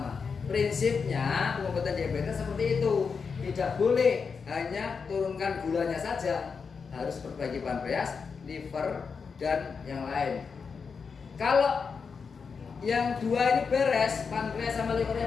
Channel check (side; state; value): right; quieter; 5.5 dB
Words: Prinsipnya pengobatan diabetes seperti itu. Tidak boleh hanya turunkan gulanya saja, harus perbaiki pankreas, liver, dan yang lain. Kalau yang dua ini beres, pankreas sama